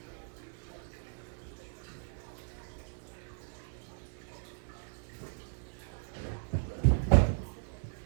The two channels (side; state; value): left; silent; digital silence